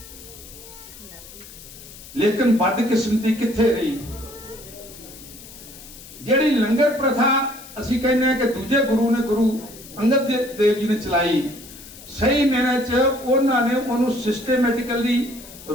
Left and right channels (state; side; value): noise; left; hiss, 17 dB below the sound